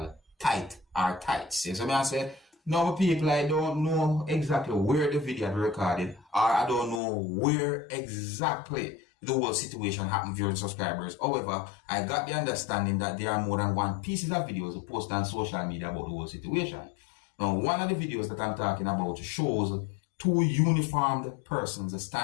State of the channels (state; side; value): drops out; right; at 7.0 s